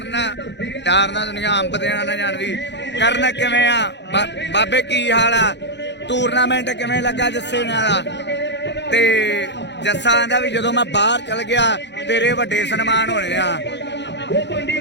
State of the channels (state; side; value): late; right; 0.51 ms